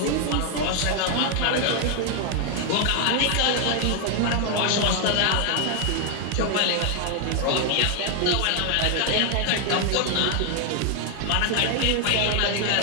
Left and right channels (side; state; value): both; different; correlation 0.00